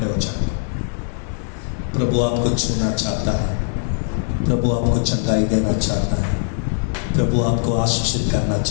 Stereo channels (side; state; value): right; silent; digital silence